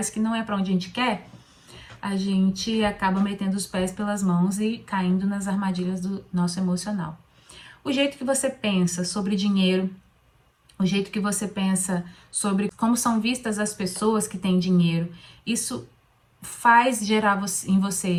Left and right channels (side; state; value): both; identical; correlation 1.00